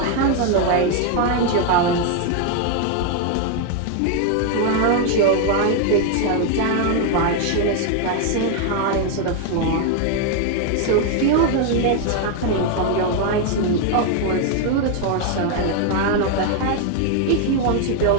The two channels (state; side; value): different; both; correlation 0.01